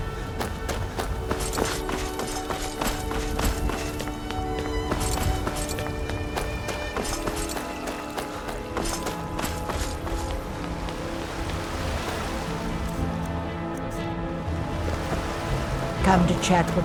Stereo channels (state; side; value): identical; both; correlation 1.00